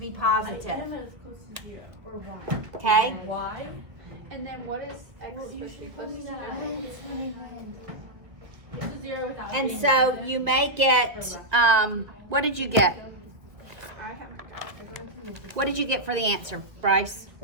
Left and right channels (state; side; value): late; left; 1.9 ms